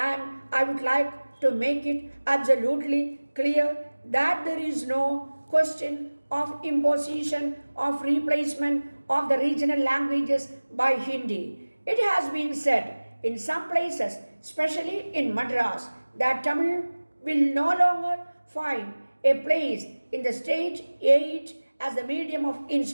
I would like to make it absolutely clear that there is no question of imposition of replacement of the regional languages by Hindi. It has been said in some places, especially in Madras, that Tamil will no longer find a place in the state aid as the medium of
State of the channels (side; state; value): both; inverted; correlation -1.00